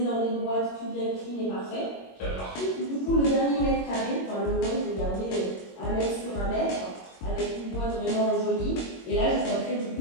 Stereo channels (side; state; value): right; late; 22 ms